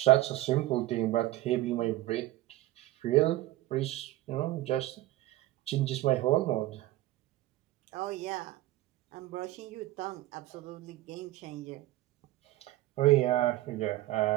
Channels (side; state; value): left; quieter; 16.5 dB